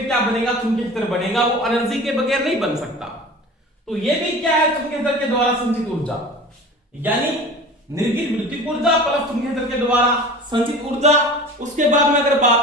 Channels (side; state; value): both; normal; correlation 0.38